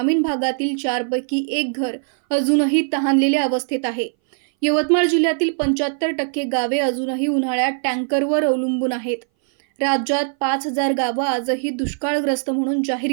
भागातील 4 पैकी 1 घर अजूनही तहानलेल्या अवस्थेत आहे. यवतमाळ जिल्ह्यातील 75% गावे अजूनही उन्हाळ्यात टँकरवर अवलंबून आहेत. राज्यात 5,000 गावं आजही दुष्काळग्रस्त म्हणून जाहीर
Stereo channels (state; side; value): silent; left; 60 dB below the other